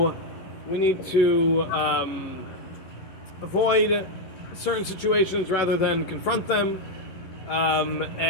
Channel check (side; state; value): right; late; 11 ms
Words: we need to avoid certain situations rather than confront them,